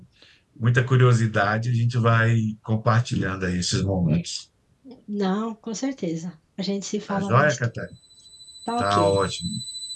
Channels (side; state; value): both; identical; correlation 1.00